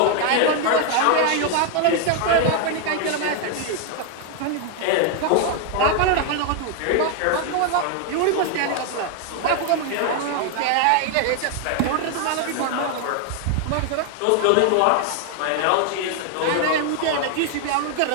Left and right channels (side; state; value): both; different; correlation 0.00